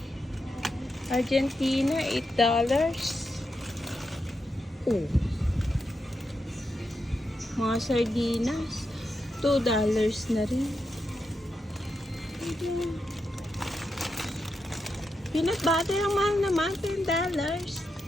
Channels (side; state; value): both; normal; correlation 0.86